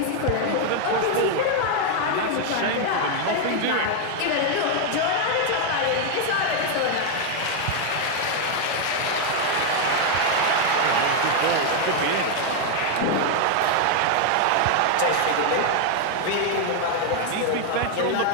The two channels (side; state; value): both; different; correlation 0.00